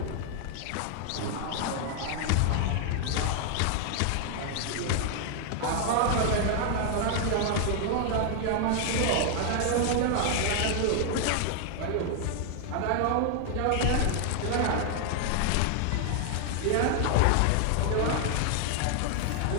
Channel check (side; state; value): both; different; correlation 0.00